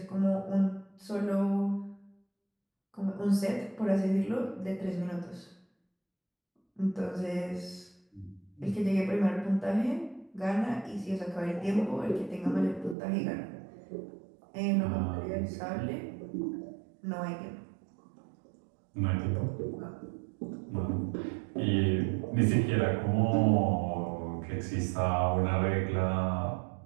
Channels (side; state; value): left; drops out; at 13.0 s